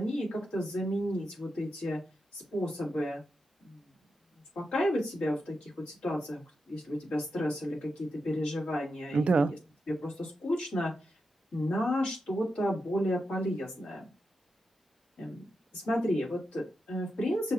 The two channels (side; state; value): both; normal; correlation 0.88